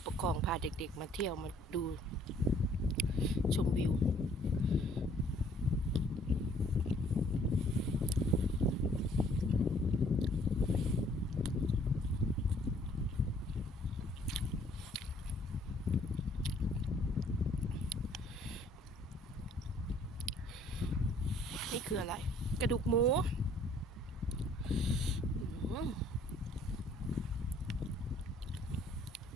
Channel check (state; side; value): normal; both; correlation 0.60